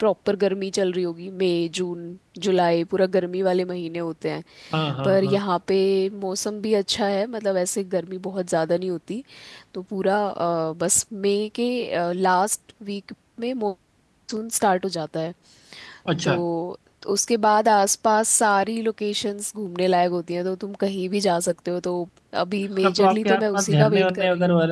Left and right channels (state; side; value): identical; both; correlation 1.00